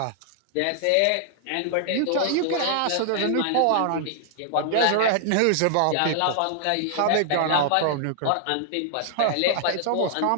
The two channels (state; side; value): different; both; correlation -0.01